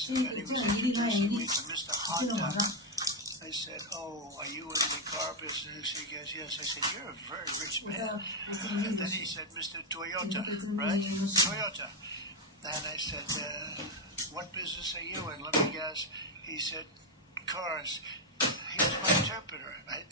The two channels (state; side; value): normal; both; correlation 0.04